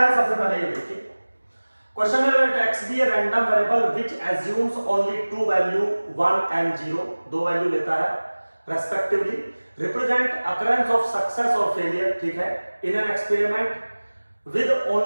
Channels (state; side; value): inverted; both; correlation -1.00